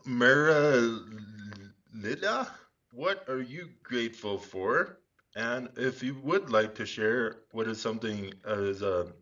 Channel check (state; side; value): identical; both; correlation 1.00